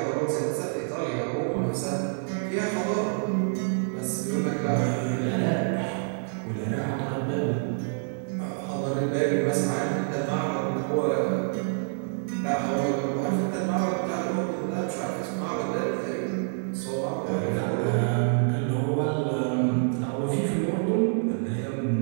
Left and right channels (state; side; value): silent; left; 60 dB below the other